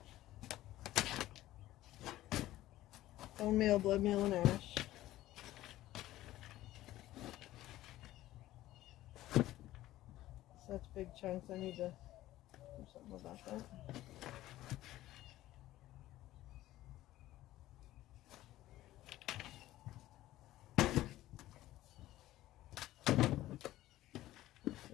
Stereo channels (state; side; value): quieter; right; 15.2 dB